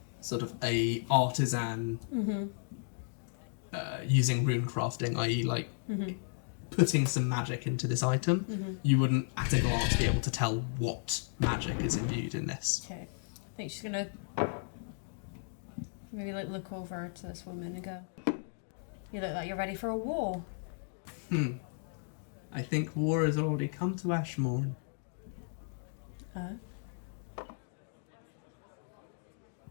sort of a artisan using rune crafting, i.e. like putting some magic into this item. You wouldn't at a glance be able to tell what magic is imbued in this. Okay. I think she's gonna maybe like look over to this woman and go, "You look like you're ready for a war." I think war has already come to Ashmorn.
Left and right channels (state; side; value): silent; right; digital silence